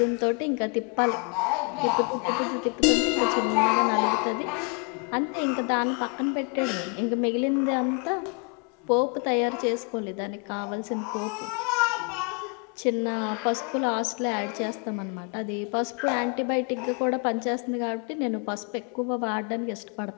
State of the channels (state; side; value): quieter; right; 35.9 dB